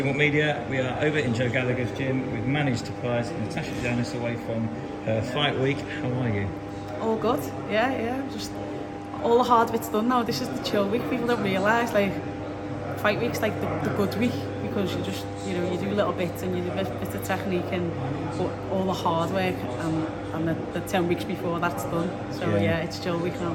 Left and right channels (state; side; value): identical; both; correlation 1.00